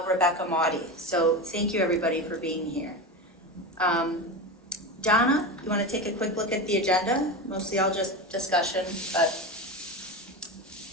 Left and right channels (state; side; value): normal; both; correlation 0.22